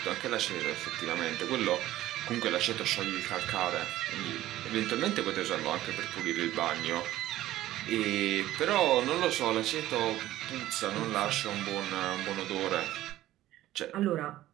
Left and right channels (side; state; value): left; quieter; 14.7 dB